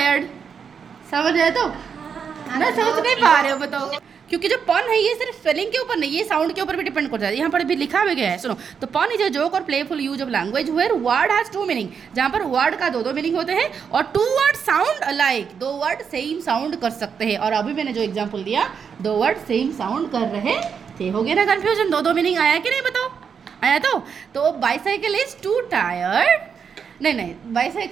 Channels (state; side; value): quieter; left; 6.7 dB